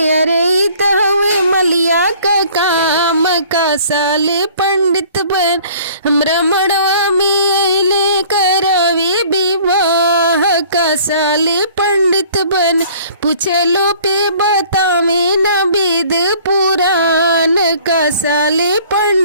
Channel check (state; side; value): inverted; both; correlation -0.53